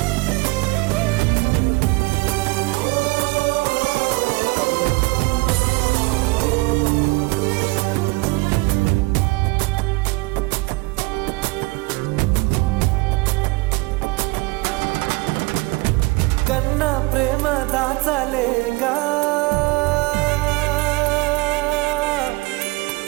కన్నా ప్రేమ దాచలేగా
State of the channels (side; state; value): left; quieter; 24.9 dB